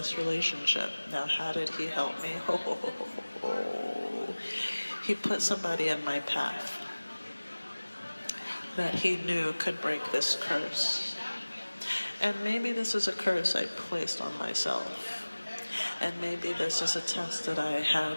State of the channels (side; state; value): both; inverted; correlation -1.00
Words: relationship. Now, how did he help me? He put somebody in my path that he knew could break this curse. And maybe this is a curse I placed on myself. And maybe this is a test that I